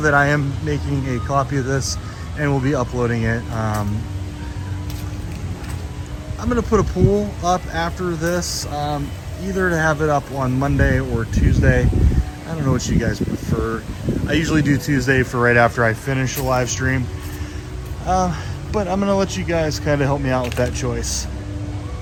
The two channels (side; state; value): both; identical; correlation 1.00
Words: I am making a copy of this and we'll be uploading it. I'm gonna put a poll up after this, either to have it up on Monday or Tuesday. I don't know what you guys prefer. I usually do Tuesday for right after I finish a live stream. But I'm gonna let you guys kind of help me out with that choice.